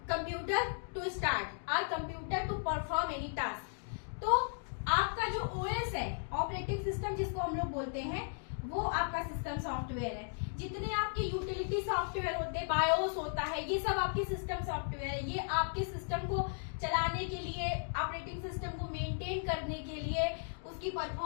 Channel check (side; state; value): right; silent; digital silence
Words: computer to start or computer to perform any task। तो आपका जो OS है, ऑपरेटिंग सिस्टम जिसको हम लोग बोलते हैं, वो आपका सिस्टम सॉफ्टवेयर है। जितने आपके यूटिलिटी सॉफ्टवेयर होते हैं, बायोस होता है, ये सब आपके सिस्टम सॉफ्टवेयर है। ये आपके सिस्टम को चलाने के लिए, ऑपरेटिंग सिस्टम को मेंटेन करने के लिए, उसकी